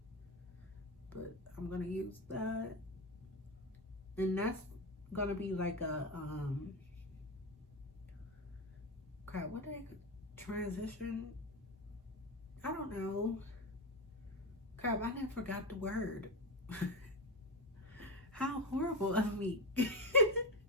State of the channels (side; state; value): both; normal; correlation 0.15